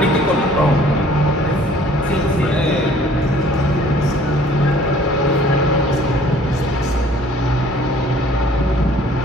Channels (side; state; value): both; normal; correlation 0.55